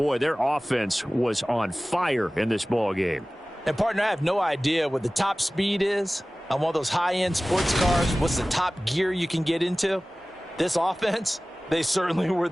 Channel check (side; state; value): both; normal; correlation 0.98